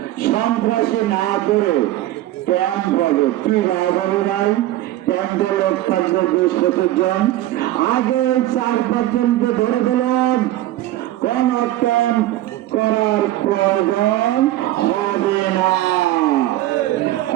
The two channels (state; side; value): quieter; left; 15.0 dB